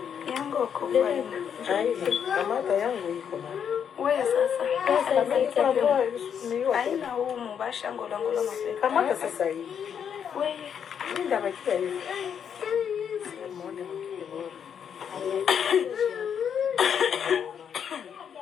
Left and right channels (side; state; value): right; quieter; 7.9 dB